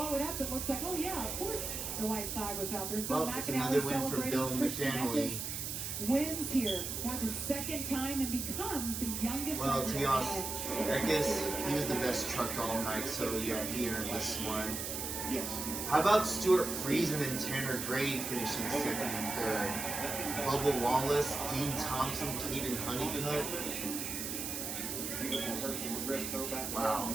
it up. It looks like, oh yeah, of course the white flag was out. There's Bill Well, it's McAnally another win for celebrating. Bill Christian McAnally. Eckes wins here for the second time and becomes the youngest. Well, to be driver honest, Eckes, he was the best truck all night, so yeah, he earned this one. Yes. How about Stuart Friesen and Tanner Gray finishing second and third? Bubba Wallace, Dean Thompson, Caden Honeycutt. Beautiful Hershel McGriff throwback. Wow.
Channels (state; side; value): noise; right; hiss, 4 dB below the sound